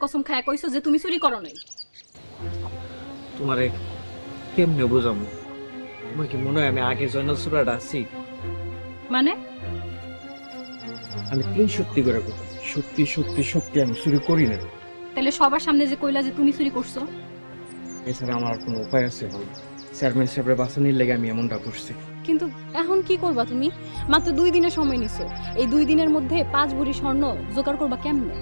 কসম খায়া কইছো যে তুমি চুরি করো নাই। তোমারে কেমনে বুঝামু? তোমার কি মনে হয় আমি আগে জয়নাল সুরাটা আছি? মানে আমি 3 সত্যি করে কই, সত্যি সত্যি সত্যি আমি চুরি করি না। তাহলে সবার সামনে যে কইলা যে তুমি চুরি করছো? এছাড়া আমার আর কোনো উপায় আছে বল? চেয়ারম্যান সাহেবের বাঁচানির লেগে আমি এমনটা করছি। কিন্তু এখন কি করবা তুমি? মাত্র 2 দিনের সময় নিছো। এই 2 দিনের মধ্যে 5 ভরি স্বর্ণ জোগাড় করবা কেমনে?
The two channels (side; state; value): both; inverted; correlation -1.00